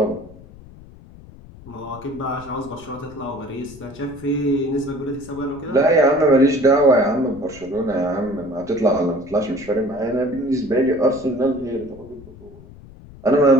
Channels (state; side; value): noise; left; rumble, 20 dB below the sound